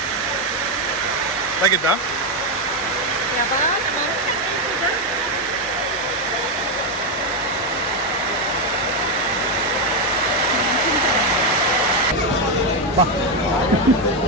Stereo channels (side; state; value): both; normal; correlation 0.05